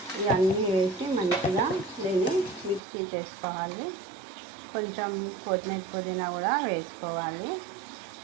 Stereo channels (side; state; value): left; drops out; at 2.8 s